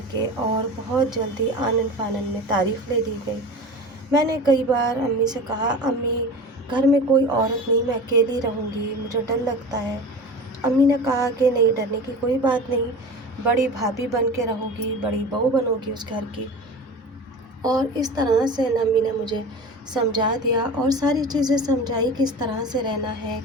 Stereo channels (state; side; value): normal; both; correlation 0.33